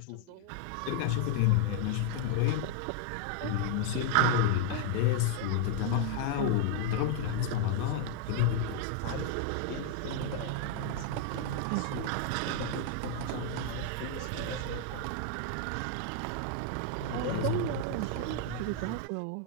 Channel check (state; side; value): different; both; correlation 0.00